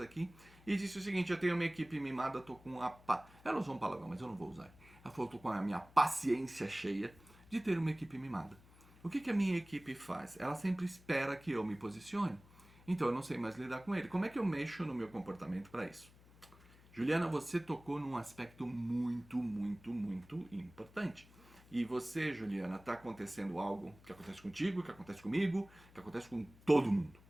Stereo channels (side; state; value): left; noise; hum, 24 dB below the sound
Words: e disse o seguinte: eu tenho uma equipe mimada, tô com a ela usou um palavrão, mas eu não vou usar. Ela falou: tô com a minha paciência cheia de ter uma equipe mimada. O que a minha equipe faz? Ela sempre espera que eu me posicione. Então eu não sei mais lidar com ele. Como é que eu mexo no meu comportamento para isso? Juliana, você tocou num aspecto muito importante. E você, Juliana, está acontecendo algo que acontece contigo, que acontece comigo, que acontece com todo mundo.